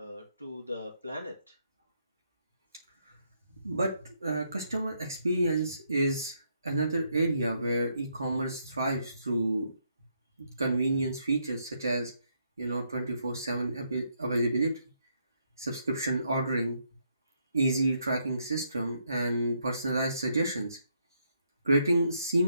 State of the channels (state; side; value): inverted; both; correlation -0.76